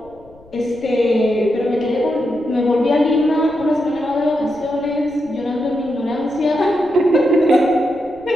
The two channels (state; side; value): noise; left; rumble, 27 dB below the sound